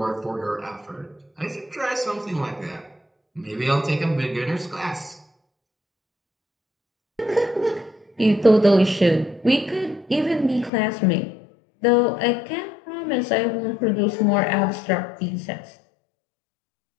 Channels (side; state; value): right; drops out; at 10.7 s